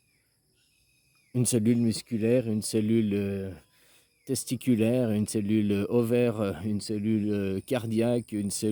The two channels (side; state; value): both; identical; correlation 1.00